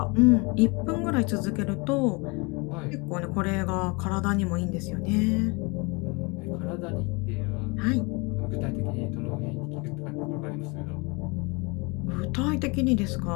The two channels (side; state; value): right; quieter; 28.8 dB